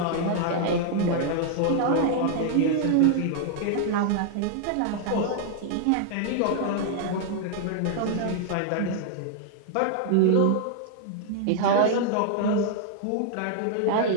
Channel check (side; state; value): both; different; correlation -0.01